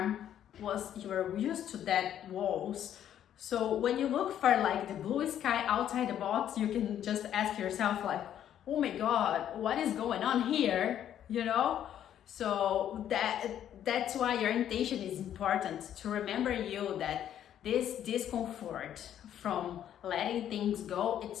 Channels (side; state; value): right; quieter; 10.5 dB